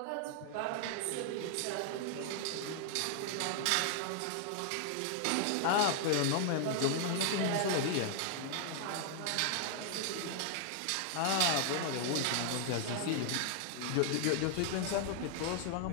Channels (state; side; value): different; both; correlation 0.00